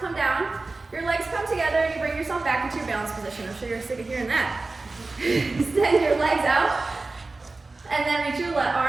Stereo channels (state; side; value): quieter; left; 3.5 dB